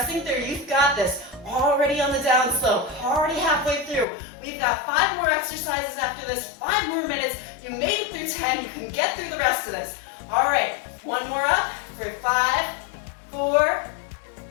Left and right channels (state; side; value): drops out; right; at 4.0 s